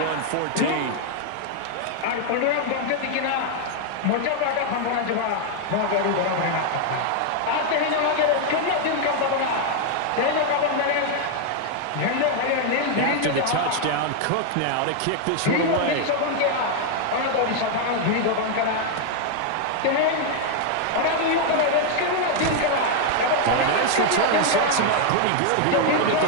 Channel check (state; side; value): different; both; correlation 0.00